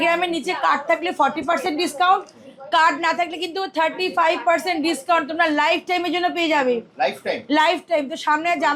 গ্রামের নিচে কার্ড থাকলে 40% ডিসকাউন্ট, কার্ড না থাকলে কিন্তু 35% ডিসকাউন্ট তোমরা লাইফ টাইমের জন্য পেয়ে যাবে। Life time. তো সামনে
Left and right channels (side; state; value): both; identical; correlation 1.00